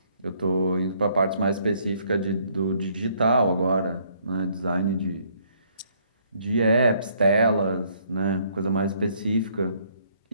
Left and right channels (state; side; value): inverted; both; correlation -0.66